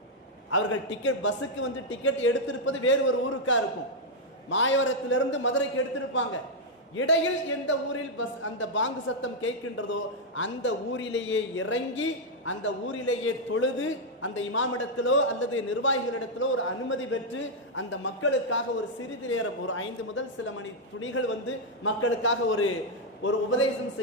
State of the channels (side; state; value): both; normal; correlation -0.02